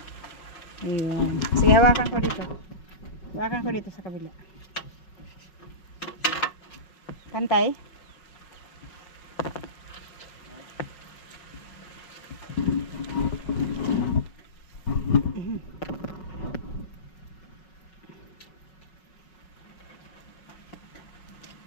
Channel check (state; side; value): late; right; 5.4 ms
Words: Ayun. Sige, hawakan ko dito. Hawakan ko dito sa kabila. Pantay.